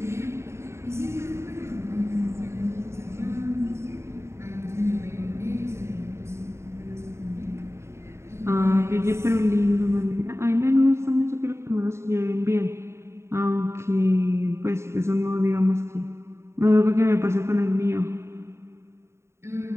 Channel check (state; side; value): late; left; 0.13 ms